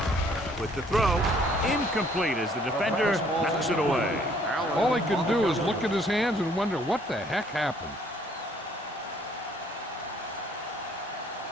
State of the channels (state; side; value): normal; both; correlation 0.62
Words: With the throw, Incomplete as the defender knocks it away. All he can do is look at his hands and wonder what the heck happened.